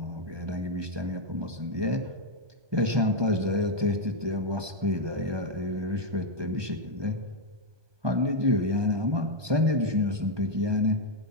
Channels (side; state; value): left; late; 1.2 ms